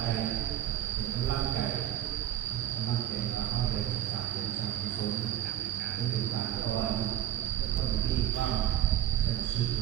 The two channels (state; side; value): quieter; left; 11.8 dB